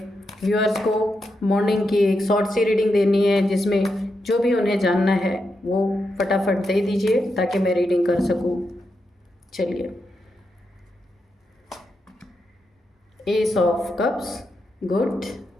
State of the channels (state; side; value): normal; both; correlation 0.85